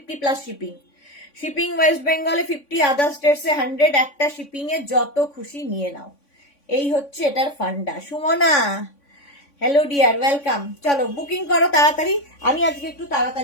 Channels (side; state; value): right; late; 3.5 ms